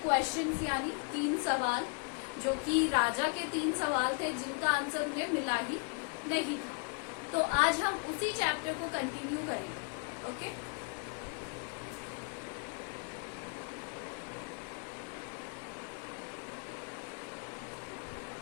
क्वेश्चंस यानी 3 सवाल, जो कि राजा के 3 सवाल थे जिनका आंसर उन्हें मिला ही नहीं था। तो आज हम उसी चैप्टर को कंटिन्यू करेंगे। ओके,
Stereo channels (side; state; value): right; quieter; 37.3 dB